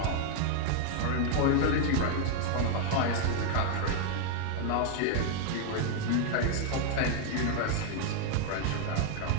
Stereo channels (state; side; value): different; both; correlation 0.00